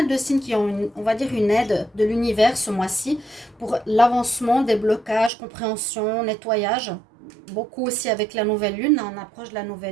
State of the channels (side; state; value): left; drops out; at 5.3 s